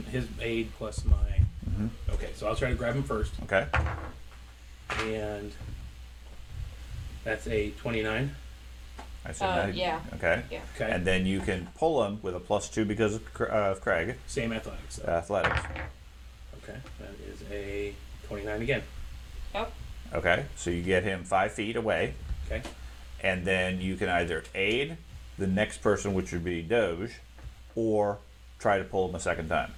His aid plus my. Mhm. Okay, so I'll try to grab him first, Okay. and that's a 29. I said that. Yeah. Okay. Yeah. Okay. And then you can pull him with a +2 because of Craig. Same athletics. Though. Athletics. Okay, that is a 29 again. Yep. Okay. So you get him 5 feet away. Okay. And then you can either aid the next person, which would be Doge, or try to pull him a second time.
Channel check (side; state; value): both; identical; correlation 1.00